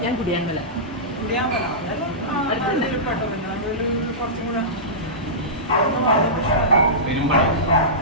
ഞാൻ കുടിയാൻമല. അതെല്ലാം നടുവിൽ പെട്ടോ. പിന്നെ നടുവിൽ കുറച്ചും കൂടെ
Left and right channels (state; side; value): normal; both; correlation -0.18